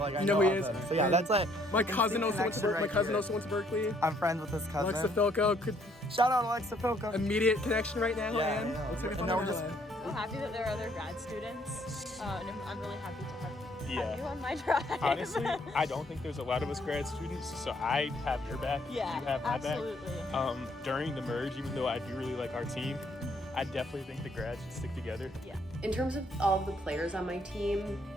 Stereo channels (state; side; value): normal; both; correlation 0.66